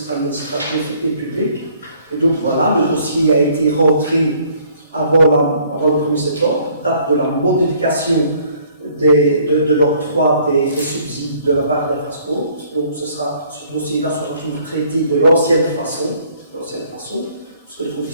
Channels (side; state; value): both; inverted; correlation -0.60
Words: administratifs et publics. Et donc voilà, le dossier a été rentré avant le 1er septembre, date de la modification de l'octroi des subsides de la part des Frasco. Donc ce dossier-là sera toujours traité de l'ancienne façon, parce que les